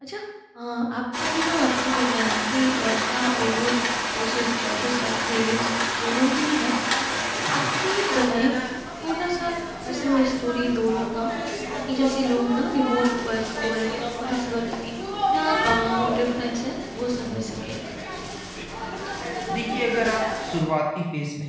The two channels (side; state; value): both; identical; correlation 1.00